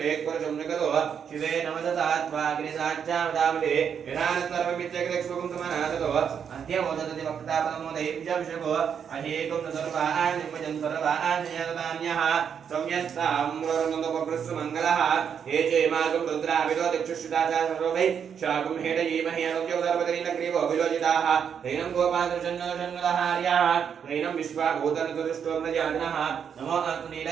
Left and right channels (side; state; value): left; quieter; 7.6 dB